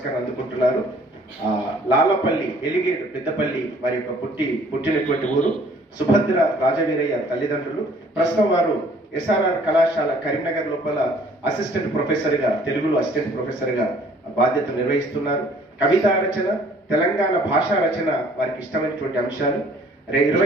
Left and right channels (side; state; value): both; normal; correlation 0.57